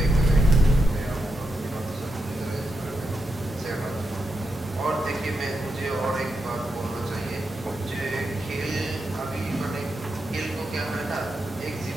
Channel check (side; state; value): both; normal; correlation 0.85